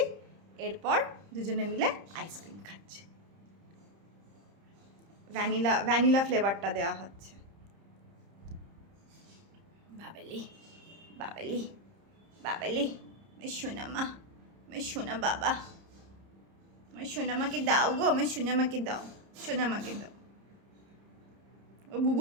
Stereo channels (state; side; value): late; left; 30 ms